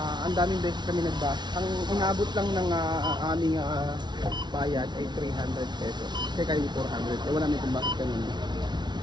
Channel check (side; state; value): left; late; 0.21 ms